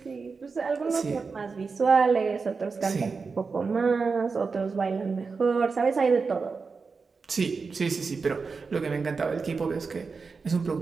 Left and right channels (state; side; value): quieter; left; 4.7 dB